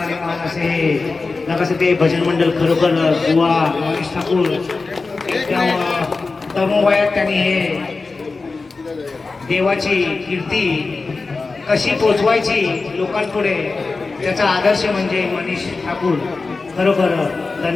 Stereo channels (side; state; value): right; quieter; 4.0 dB